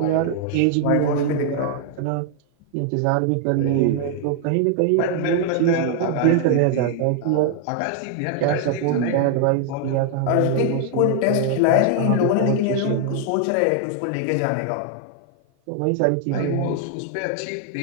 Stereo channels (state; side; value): different; both; correlation 0.00